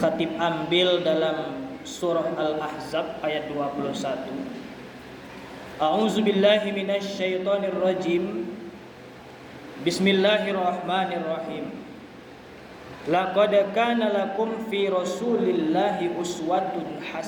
ambil dalam surah Al-Ahzab ayat 21. A'udzu billahi minasy syaithanir rajim. Bismillahirrahmanirrahim. Laqad kana lakum fi Rasulillahi uswatun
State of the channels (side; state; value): both; identical; correlation 1.00